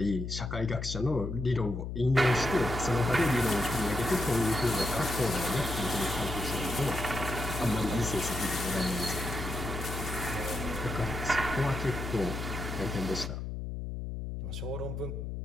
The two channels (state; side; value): noise; left; hum, 5 dB below the sound